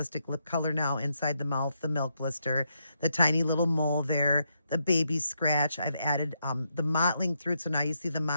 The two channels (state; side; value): inverted; both; correlation -0.79